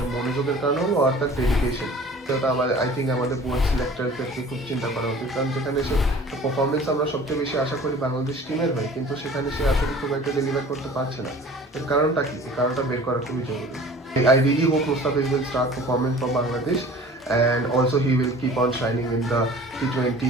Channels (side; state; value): both; normal; correlation 0.45